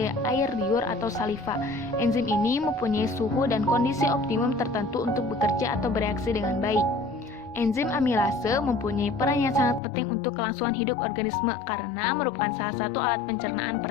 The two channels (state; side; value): drops out; right; at 9.8 s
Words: air liur atau saliva. Enzim ini mempunyai suhu dan kondisi optimum tertentu untuk bekerja atau bereaksi dengan baik. Enzim amilase mempunyai peran yang sangat penting untuk kelangsungan hidup organisme karena merupakan salah satu alat pencernaan